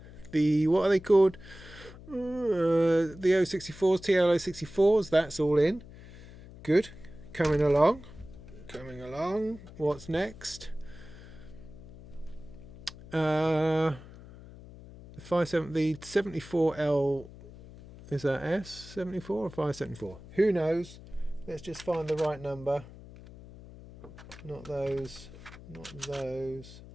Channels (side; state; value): left; noise; hum, 17 dB below the sound